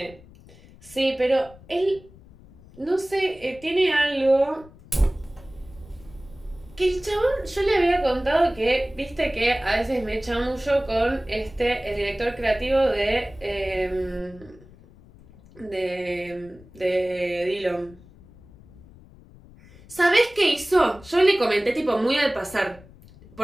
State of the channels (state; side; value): noise; left; rumble, 23 dB below the sound